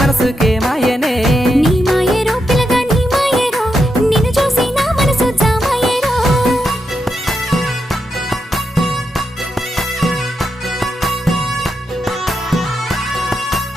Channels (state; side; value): normal; both; correlation 0.84